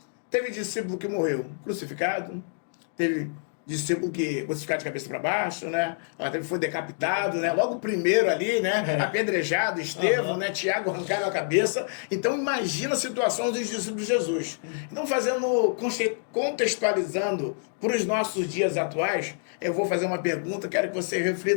Teve discípulo que morreu crucificado, teve discípulo que crucificado de cabeça para baixo, né? Foi decapitado, né? Logo o primeiro ali, né? Apedrejado, Estevão, né? Tiago arrancaram a cabeça. Então imagina a situação dos discípulos de Jesus. Então contextualizando para os nossos dias atuais, eu vou fazer uma pergunta, quero que você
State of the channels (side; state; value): right; silent; digital silence